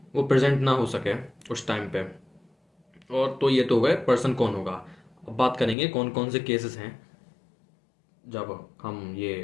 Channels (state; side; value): drops out; right; at 5.8 s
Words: वो प्रेजेंट ना हो सके उस टाइम पे। और तो ये तो हो गए पर्सन कौन होगा। अब बात करेंगे कौन कौन से केसेस हैं जब हम